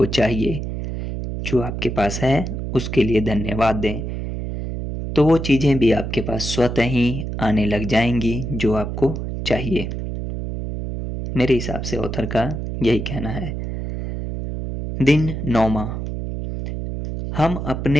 चाहिए, जो आपके पास है उसके लिए धन्यवाद दें, तो वो चीज़ें भी आपके पास स्वतः ही आने लग जाएंगी जो आपको चाहिए। मेरे हिसाब से ऑथर का यही कहना है। दिन 9वां, हम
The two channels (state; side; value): noise; right; hum, 5 dB below the sound